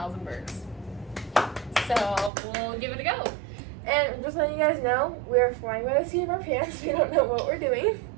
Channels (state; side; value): drops out; left; at 2.3 s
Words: and BIRKS. So we'll give it a go. And just letting you guys know, we're flying by the seat of our pants. We don't know what we're doing.